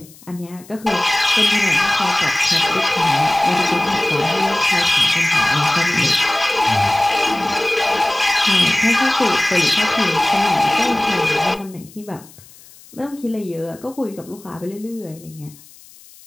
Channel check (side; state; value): left; noise; hiss, 23 dB below the sound